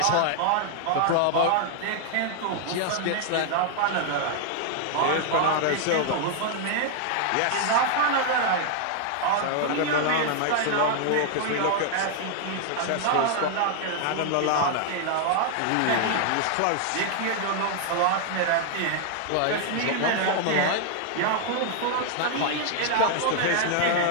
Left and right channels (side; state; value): both; different; correlation 0.00